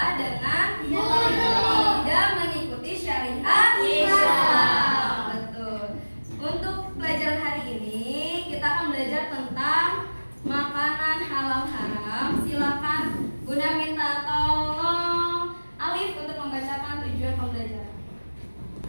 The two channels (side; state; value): both; inverted; correlation -1.00